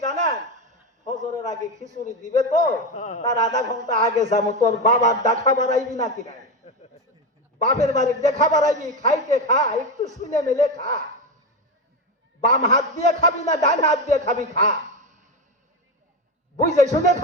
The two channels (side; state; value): both; normal; correlation 0.15